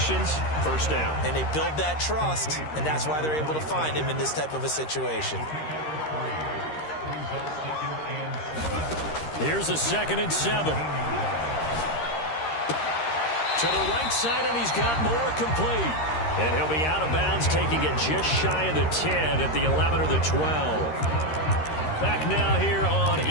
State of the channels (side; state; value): right; late; 13 ms